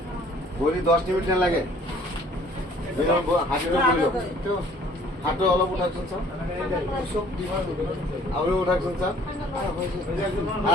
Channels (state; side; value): normal; both; correlation 0.56